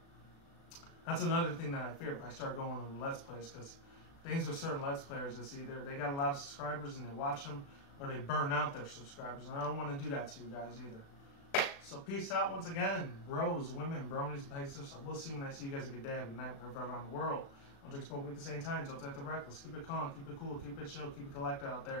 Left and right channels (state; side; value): late; right; 36 ms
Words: That's another thing that I fear if I start going on Let's Plays, because things with certain Let's Players is either they got a lot of subscribers and they watch them, or they burn out their subscribers, and I don't want to do that to you guys either. So peace out once again, bros, women, bronies, and pegasisters. I will see you when I see you guys. A good day, have a good night, wherever around the world. Don't drink smoke at the same time. Don't take the reckless. Keep it calm, keep it cool, keep it chill, keep it collected out